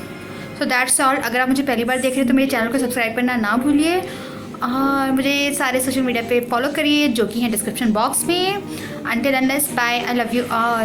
So that's all. अगर आप मुझे पहली बार देख रहे हैं तो मेरे चैनल को सब्सक्राइब करना ना भूलिए और मुझे सारे सोशल मीडिया पे फॉलो करिए जो कि हैं डिस्क्रिप्शन बॉक्स में। Until unless bye, I love you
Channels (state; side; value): identical; both; correlation 1.00